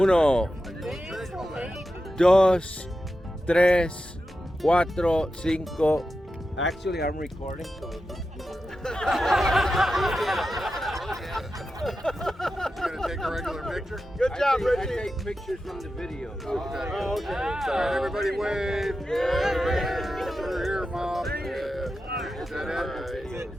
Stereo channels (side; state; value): both; normal; correlation 0.91